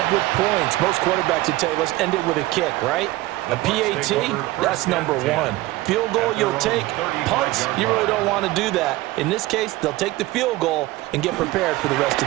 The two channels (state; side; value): quieter; left; 18.3 dB